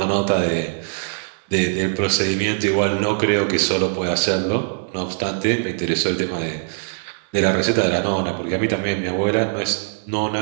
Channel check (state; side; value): silent; left; digital silence